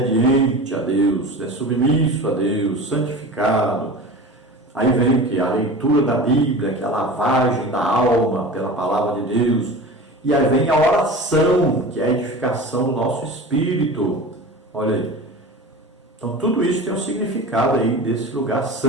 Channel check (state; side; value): normal; both; correlation 0.34